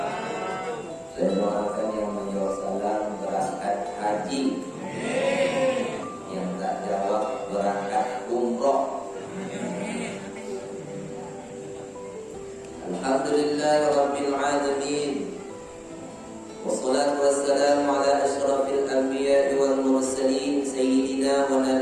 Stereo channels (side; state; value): both; identical; correlation 1.00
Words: Saya doakan yang menjawab salam berangkat haji, yang tak jawab berangkat umroh. Alhamdulillahirabbil alamin. Wassalatu wassalamu ala asyrafil anbiya'i wal mursalin sayyidina wa